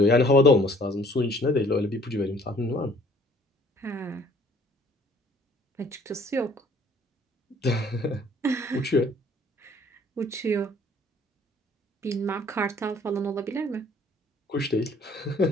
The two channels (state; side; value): normal; both; correlation 0.56